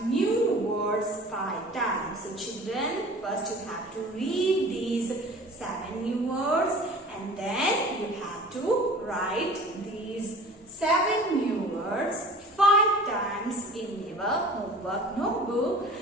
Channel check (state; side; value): normal; both; correlation 0.43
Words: new words 5 times. So children, first you have to read these 7 new words and then you have to write these 7 new words 5 times in your homework notebook